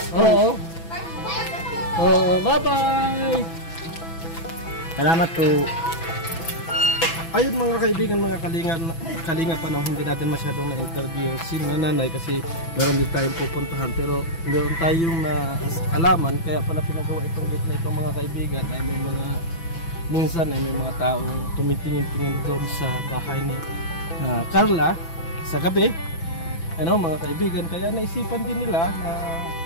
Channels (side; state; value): right; late; 6.0 ms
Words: po. Oo. Oo, bye-bye. Salamat po. Ayun mga kaibigan, mga kalinga pa na hindi natin masyadong na-interview si nanay kasi meron din tayong pupuntahan pero meron tayong alaman kaya pala pinagawa itong gate na itong mga kaibigan ay may mga minsan ay may mga taong tumitingin-tingin doon sa bahay ni Carla sa gabi, ano mga kaibigan, kaya naisipan din nila na